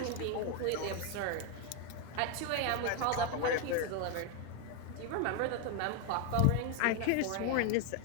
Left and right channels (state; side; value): different; both; correlation 0.01